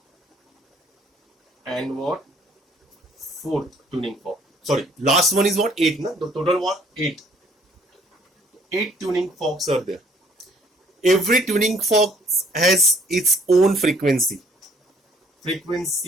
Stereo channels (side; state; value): both; normal; correlation 0.61